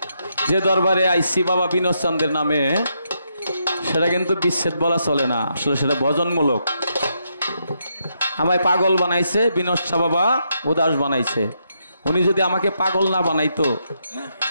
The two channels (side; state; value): both; inverted; correlation -0.79